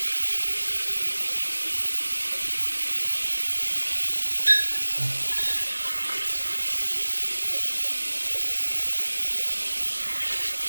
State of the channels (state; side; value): inverted; both; correlation -1.00